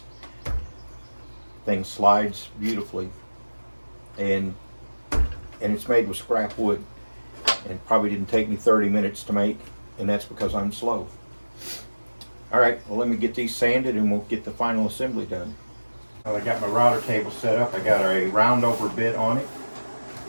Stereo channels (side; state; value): both; inverted; correlation -1.00